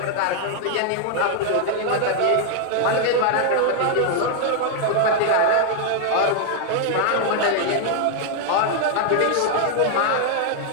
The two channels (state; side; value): different; both; correlation 0.00